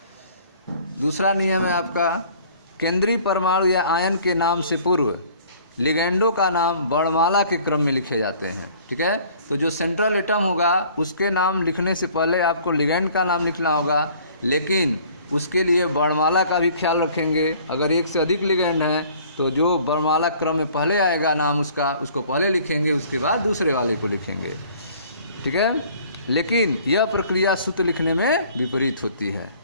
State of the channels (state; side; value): inverted; both; correlation -0.54